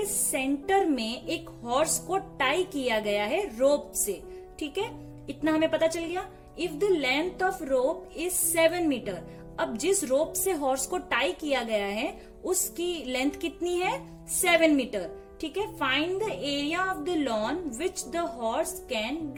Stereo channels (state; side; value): identical; both; correlation 1.00